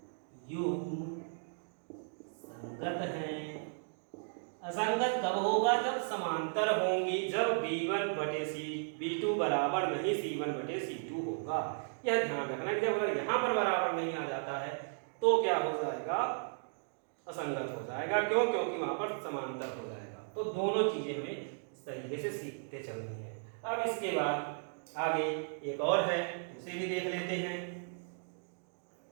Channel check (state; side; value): silent; left; digital silence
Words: युग्म संगत हैं। असंगत कब होगा, जब समांतर होंगी, जब b1 बटे b2 बराबर नहीं c1 बटे c2 होगा। यह ध्यान रखना कि जब अगर यहाँ पर बराबर नहीं आ जाता है तो क्या हो जाएगा, असंगत हो जाएगा। क्यों, क्योंकि वहां पर समांतर हो जाएगा। तो दोनों चीजें हमें इस तरीके से सीखते चलनी है। अब इसके बाद आगे एक और है, उसे भी देख लेते हैं।